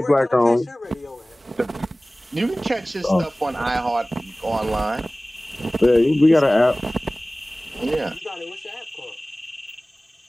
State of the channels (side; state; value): both; normal; correlation 0.98